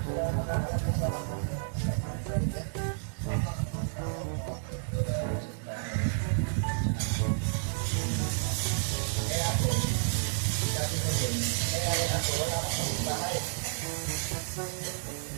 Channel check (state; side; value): silent; left; 57 dB below the other